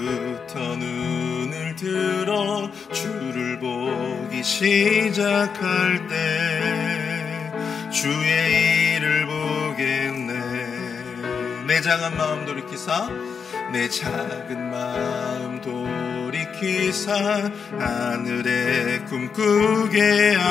눈을 들어 주를 보기 시작할 때 주의 일을 보겠네. 내 작은 마음 돌이키사 내 작은 마음 돌이키사 하늘에 꿈꾸게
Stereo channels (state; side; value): quieter; right; 6.2 dB